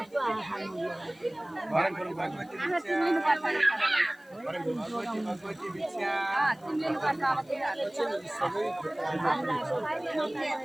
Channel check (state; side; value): noise; left; hiss, 30 dB below the sound